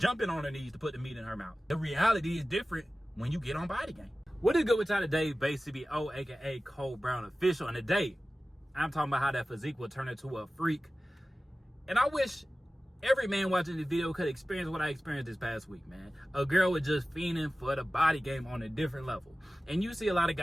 on her knees to put the meat in her mouth. The reality is different when you get on Body Game. What is good with y'all today? Basically, aka Cole Brown Official. And today, I'm talking about how that physique will turn into a freak. And I wish every man watching this video could experience what I experienced this past week, man. A girl was just fiending for the body game on a different level. And you see a lot of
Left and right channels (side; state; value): both; normal; correlation 0.96